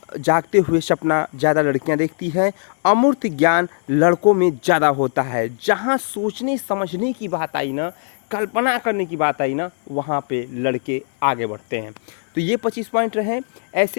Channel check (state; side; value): silent; right; digital silence